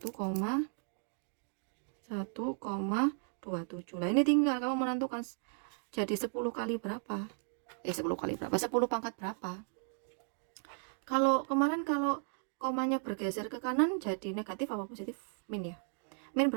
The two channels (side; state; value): left; silent; 54 dB below the other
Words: Nah, ini tinggal kamu menentukan jadi 10 kali berapa, 10 kali berapa, 10 pangkat berapa. Kalau kemarin kalau komanya bergeser ke kanan jadi negatif apa positif? Min ya. Min